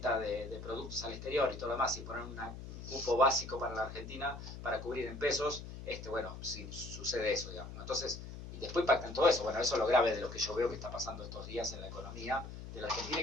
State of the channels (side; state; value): left; noise; hum, 10 dB below the sound